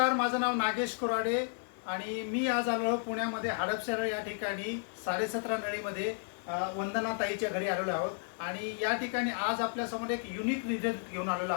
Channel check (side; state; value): right; silent; digital silence